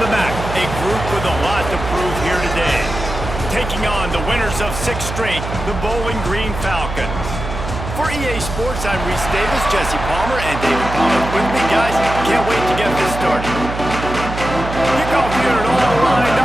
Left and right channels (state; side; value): noise; right; hum, 7 dB below the sound